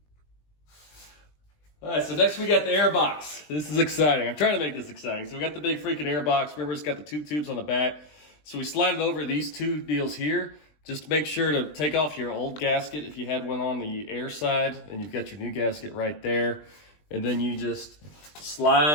All right, so next we got the air box. This is exciting. I'm trying to make this exciting. So we got the big freaking air box. Remember, it's got the 2 tubes on the back. So we slide it over these 2 deals here. Just make sure to take off your old gasket if you had one on the air side, and you've got your new gasket right there. And then you just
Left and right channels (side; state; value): right; late; 20 ms